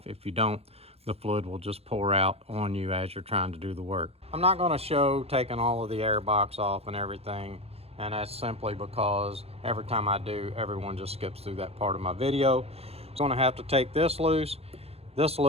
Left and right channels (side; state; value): left; late; 0.29 ms